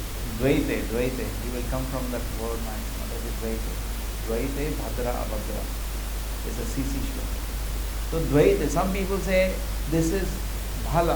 Dvaite, you will come from that word, that is Dvaite. Dvaite, Bhadra, Abhadra. It's a CC shloka. So Dvaite, some people say this is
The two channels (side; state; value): both; identical; correlation 1.00